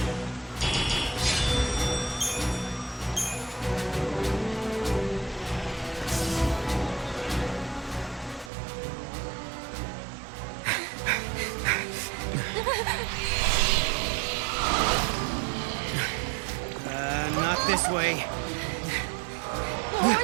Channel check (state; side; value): drops out; left; at 8.5 s